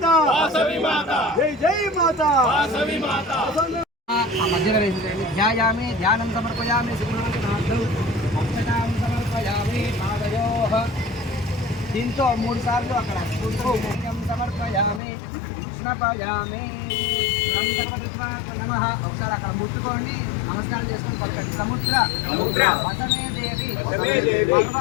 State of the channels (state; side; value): drops out; right; at 15.0 s